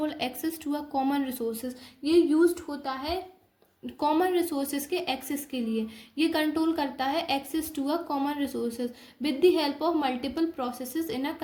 access to a common resources. ये यूज होता है कॉमन रिसोर्सेज के एक्सेस के लिए। ये कंट्रोल करता है access to a common resources with the help of multiple processes in a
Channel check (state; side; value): identical; both; correlation 1.00